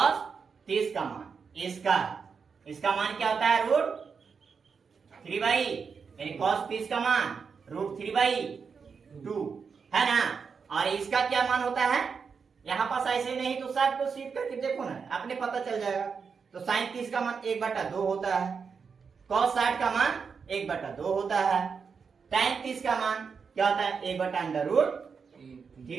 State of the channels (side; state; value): left; quieter; 5.7 dB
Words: 30 का मान इसका मान क्या होता है √3 यानी cos 30 का मान √3/2 है ना। और इसका क्या मान होता है यहाँ पास ऐसे नहीं तो सब को सीट करके देखो ना आपने पता चल जाएगा। तो साइन 30 का मान 1/2 होता है, cos 60 का मान 1/2 होता है, tan 30 का मान क्या होता है